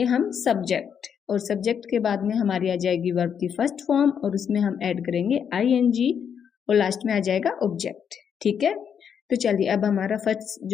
हम सब्जेक्ट, और सब्जेक्ट के बाद में हमारी आ जाएगी वर्ब की फर्स्ट फॉर्म, और उसमें हम ऐड करेंगे ING, और लास्ट में आ जाएगा ऑब्जेक्ट। ठीक है, तो चलिए अब हमारा फर्स्ट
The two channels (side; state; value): right; quieter; 7.7 dB